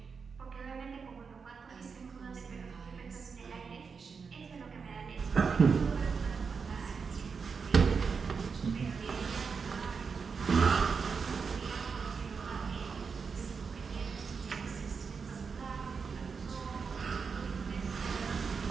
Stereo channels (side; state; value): left; quieter; 5.5 dB